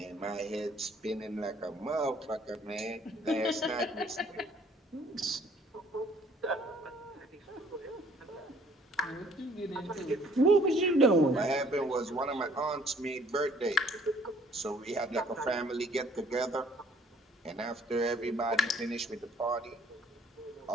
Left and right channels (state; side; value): normal; both; correlation 0.59